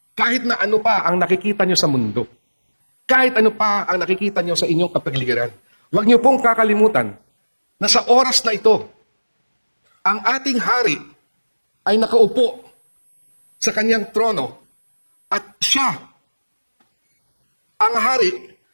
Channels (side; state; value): both; inverted; correlation -1.00